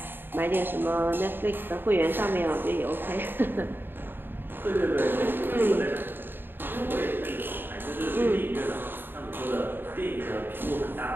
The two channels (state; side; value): late; left; 0.096 ms